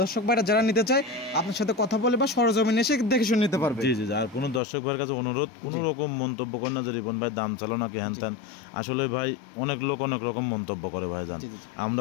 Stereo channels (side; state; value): right; drops out; at 4.6 s